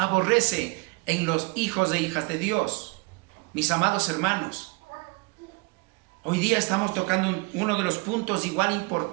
en los hijos e hijas de Dios. Mis amados hermanos, hoy día estamos tocando uno de los puntos igual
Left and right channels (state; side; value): quieter; left; 28.2 dB